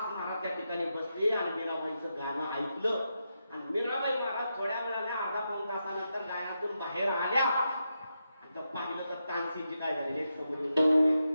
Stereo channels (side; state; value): both; inverted; correlation -0.86